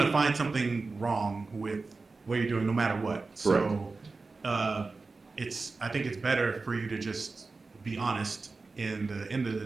to find something wrong with what you're doing no matter what. So I think it's better for you to just be honest in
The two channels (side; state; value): left; quieter; 3.9 dB